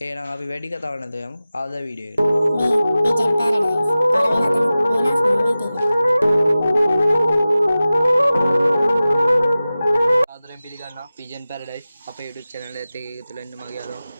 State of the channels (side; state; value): both; inverted; correlation -0.96